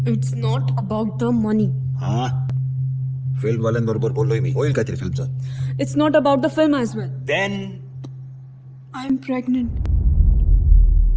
It's not about the money. हा फिल्म वाल्यांबरोबर बोललोय मी, होईल काहीतरी फिल्मचं. It's not about the film as well. Then I am pregnant.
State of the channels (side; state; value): both; identical; correlation 1.00